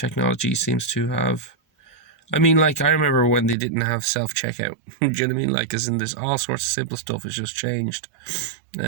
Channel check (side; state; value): left; drops out; at 3.6 s